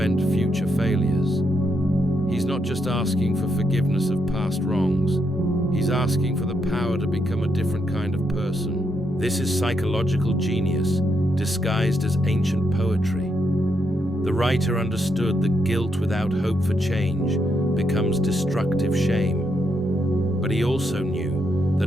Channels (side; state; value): both; normal; correlation 0.79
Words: future failures. He's not just asking for forgiveness of past wrongs, he's asking for the power to become a different kind of person. This is psychological genius, disguised as ancient poetry. The writer understood that guilt without hope for change becomes destructive shame. But he also knew